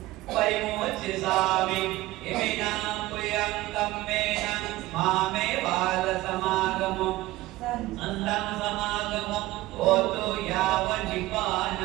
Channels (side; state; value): left; quieter; 17.9 dB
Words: परिमोचयामि इमिना पुयं कम्मेन मामे बालसमागमो अन्तं समागमो ओतो